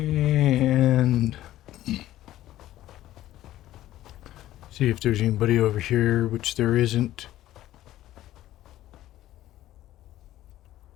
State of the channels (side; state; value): right; quieter; 14.1 dB